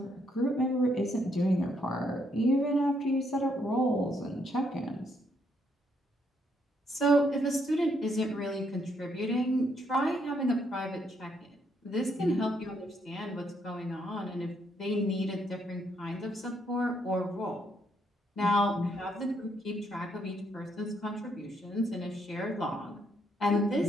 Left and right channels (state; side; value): normal; both; correlation 0.73